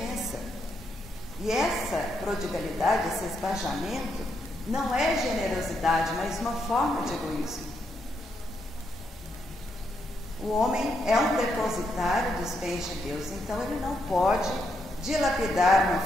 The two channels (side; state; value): both; normal; correlation 0.79